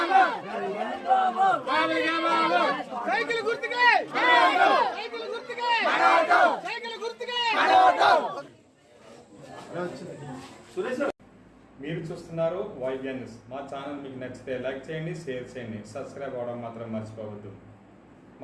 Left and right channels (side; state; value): both; identical; correlation 1.00